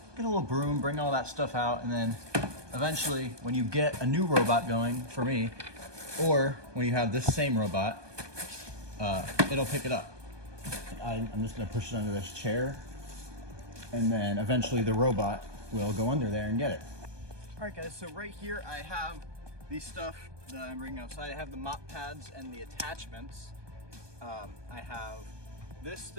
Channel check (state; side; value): late; left; 1.2 ms